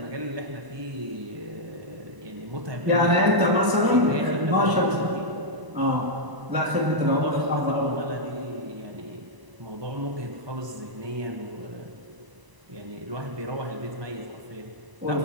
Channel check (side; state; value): left; late; 1.0 ms